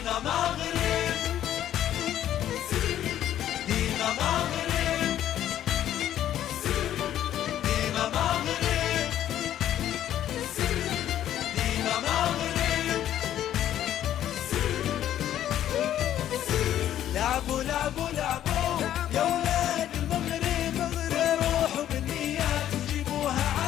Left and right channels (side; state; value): right; quieter; 11.5 dB